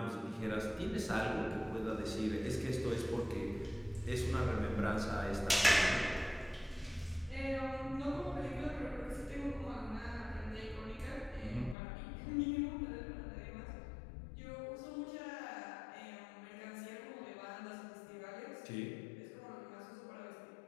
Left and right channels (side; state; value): right; drops out; at 11.8 s